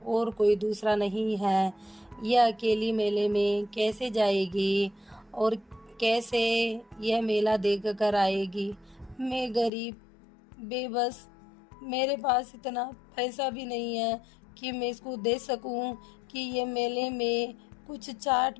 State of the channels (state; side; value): drops out; right; at 9.7 s